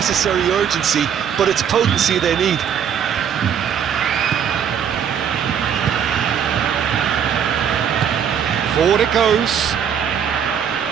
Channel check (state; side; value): quieter; left; 8.2 dB